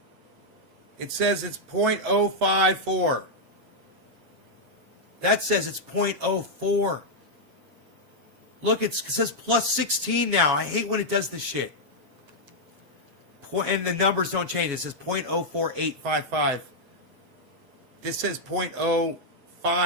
It says it's 0.054. That says it's 0.04. Look, it says +16 now. I hate when it does this shit. And the numbers don't change. It says 0.04855. This says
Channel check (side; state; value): left; late; 7.2 ms